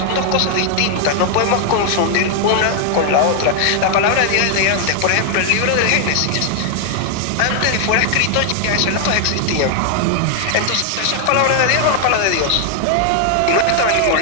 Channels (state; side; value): different; both; correlation 0.00